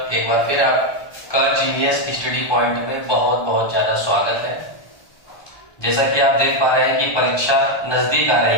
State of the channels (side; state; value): right; late; 1.2 ms